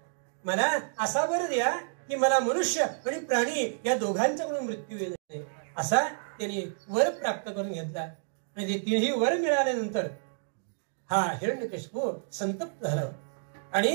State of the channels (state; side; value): silent; left; digital silence